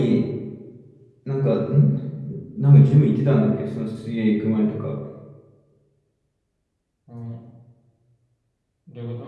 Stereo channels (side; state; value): both; identical; correlation 1.00